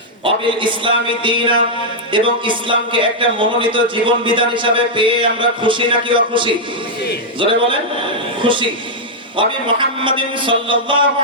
অবিল ইসলামি দীনা, এবং ইসলামকে একটা মনোনীত জীবন বিধান হিসাবে পেয়ে আমরা খুশি নাকি অখুশি? জোরে বলেন, খুশি। ওয়া মুহাম্মাদিন সাল্লাল্লাহু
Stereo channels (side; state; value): both; normal; correlation -0.05